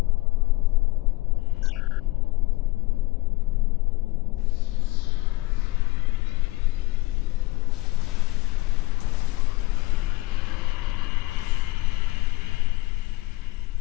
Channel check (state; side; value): quieter; right; 20.0 dB